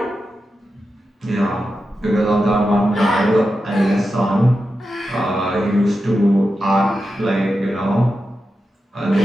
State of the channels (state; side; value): normal; both; correlation 0.90